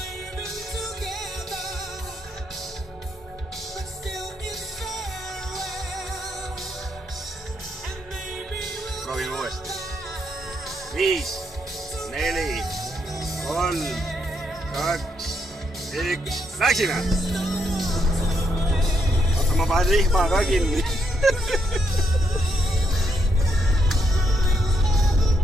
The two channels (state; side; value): normal; both; correlation 0.77